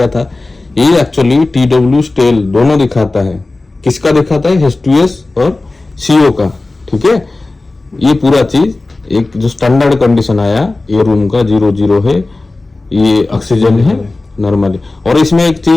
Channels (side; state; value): right; quieter; 3.2 dB